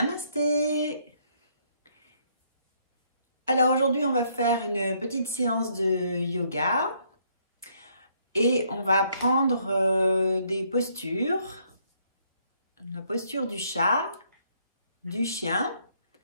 Alors aujourd'hui, on va faire une petite séance de yoga et on va prendre des postures. La posture du chat, du chien,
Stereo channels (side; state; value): both; inverted; correlation -0.69